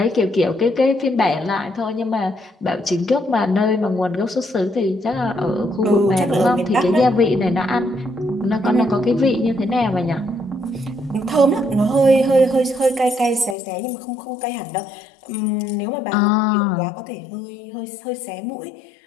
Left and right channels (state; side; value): drops out; right; at 13.6 s